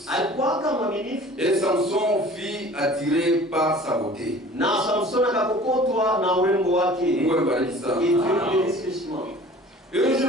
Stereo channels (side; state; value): both; normal; correlation 0.46